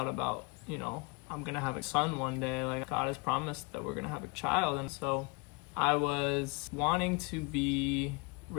about, I'm gonna have a son one day. Like, God has promised that we're gonna have a child. And so I was wanting to be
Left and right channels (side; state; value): right; quieter; 28.8 dB